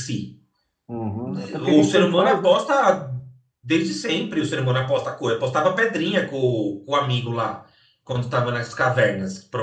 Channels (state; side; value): identical; both; correlation 1.00